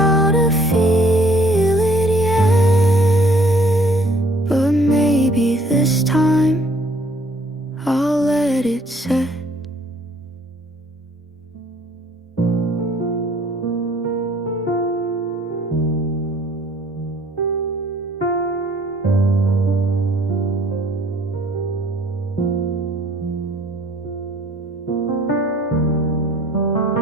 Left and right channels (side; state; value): both; normal; correlation 0.59